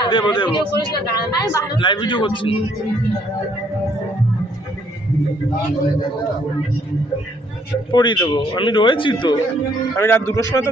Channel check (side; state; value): both; normal; correlation 0.66